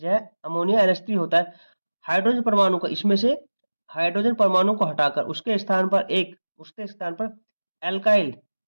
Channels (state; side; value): inverted; both; correlation -1.00